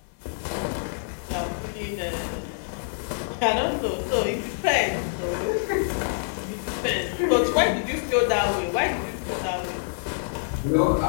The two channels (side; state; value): right; silent; 61 dB below the other